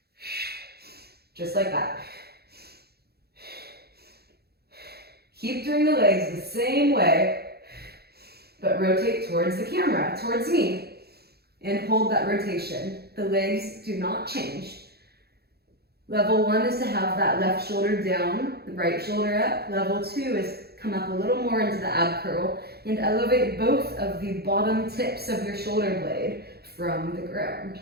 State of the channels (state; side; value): late; left; 0.46 ms